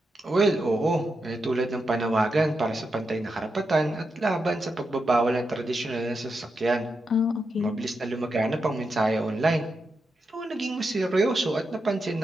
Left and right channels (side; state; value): both; normal; correlation 0.86